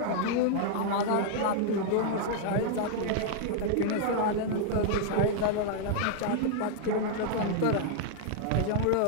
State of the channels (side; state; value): both; different; correlation -0.01